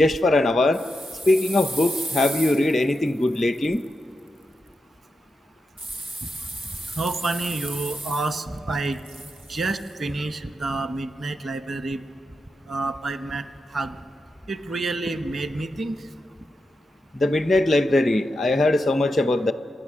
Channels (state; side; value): normal; both; correlation 0.87